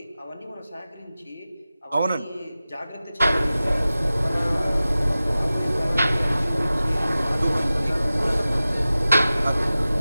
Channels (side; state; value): both; inverted; correlation -0.96